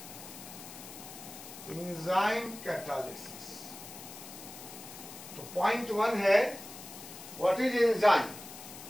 Enzyme catalysis. तो पॉइंट 1 है व्हाट इज एंजाइम।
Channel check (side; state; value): left; noise; hiss, 13 dB below the sound